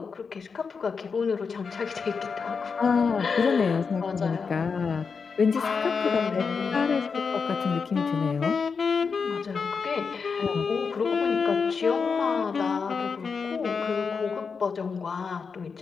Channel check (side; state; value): right; quieter; 5.4 dB